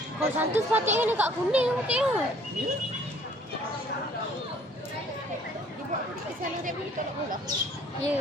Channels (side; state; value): both; normal; correlation 0.57